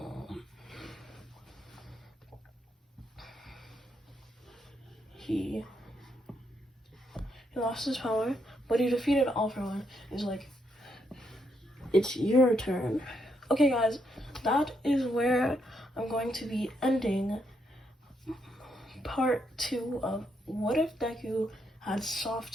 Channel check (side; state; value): both; normal; correlation 0.77